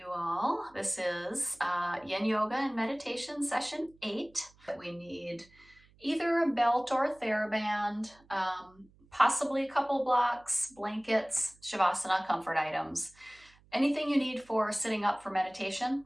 all. This is Yin Yoga and Meditation Session 8. We need either a belt or a TheraBand, possibly a couple blocks, blankets, Shavasana comfort items. Anything you need for sitting up for meditation.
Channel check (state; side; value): noise; right; hum, 29 dB below the sound